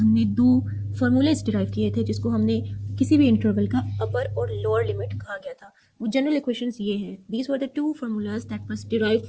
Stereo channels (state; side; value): identical; both; correlation 1.00